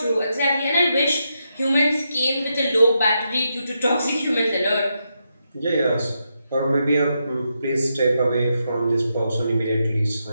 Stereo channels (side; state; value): both; inverted; correlation -0.84